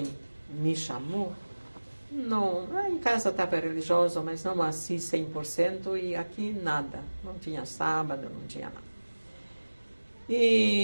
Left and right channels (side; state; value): both; inverted; correlation -1.00